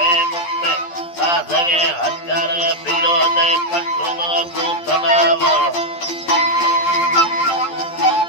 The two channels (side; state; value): right; late; 12 ms